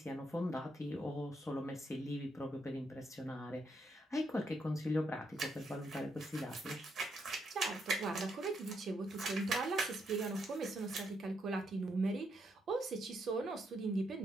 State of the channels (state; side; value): normal; both; correlation 0.78